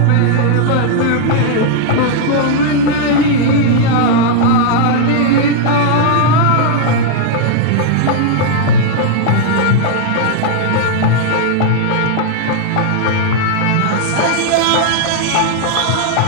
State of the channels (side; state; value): both; different; correlation -0.01